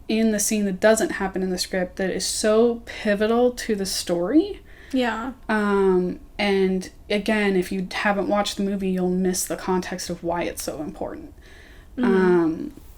in the scene that doesn't happen in the script that is so pivotal to the story. Yeah. And again, if you haven't watched the movie, you'll miss the context of why it's so important. Mm-hmm.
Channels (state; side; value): identical; both; correlation 1.00